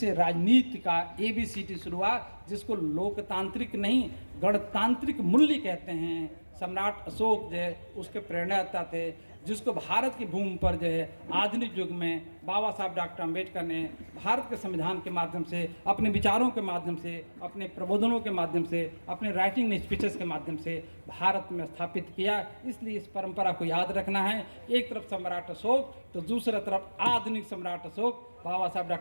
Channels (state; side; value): inverted; both; correlation -1.00